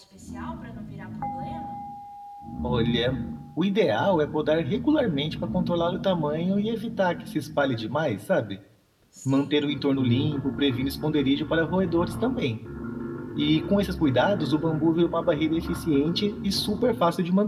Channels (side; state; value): both; identical; correlation 1.00